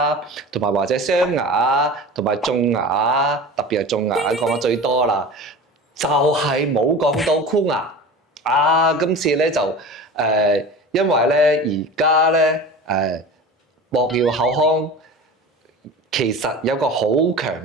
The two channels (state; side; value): normal; both; correlation 0.34